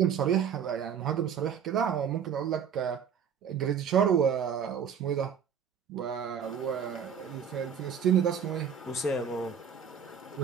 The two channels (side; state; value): left; quieter; 7.6 dB